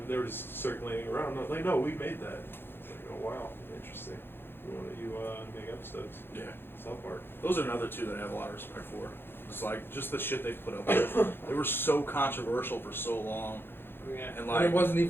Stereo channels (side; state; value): right; late; 0.10 ms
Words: they were just circulating around. And I was like, no, we made that. It's like, oh wow, interesting. We want you make episodes. Yeah. South Park. Those are another two that I have a lot of respect for. It's like just the shit they put up with. They were so controversial for so long, Yeah. and And like it wasn't